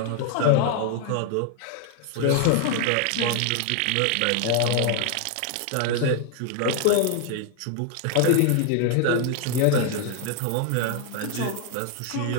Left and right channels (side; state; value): both; different; correlation 0.00